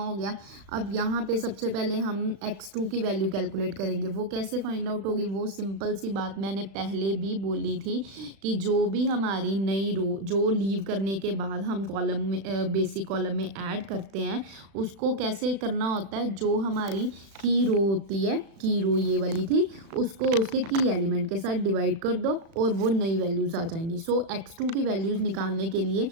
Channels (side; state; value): left; late; 36 ms